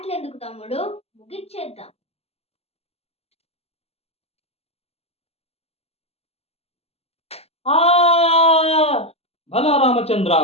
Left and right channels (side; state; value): right; late; 0.29 ms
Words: తమ్ముడు, ముగిచ్చేద్దాం. భలా రామచంద్ర